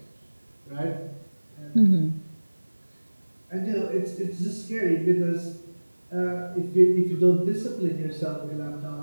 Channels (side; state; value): both; inverted; correlation -1.00